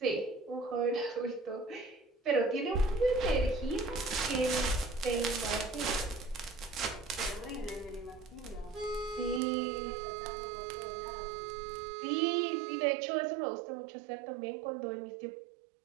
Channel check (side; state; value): left; drops out; at 9.4 s